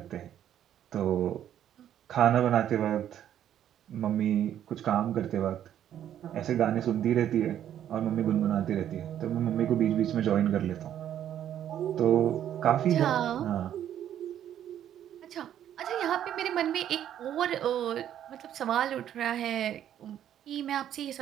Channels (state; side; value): quieter; left; 10.6 dB